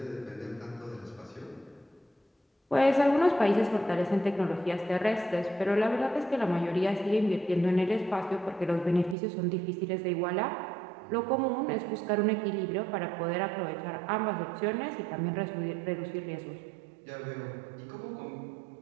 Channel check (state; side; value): drops out; left; at 9.2 s